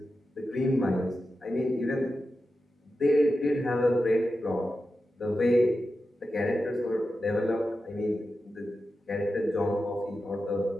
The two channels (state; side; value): normal; both; correlation 0.91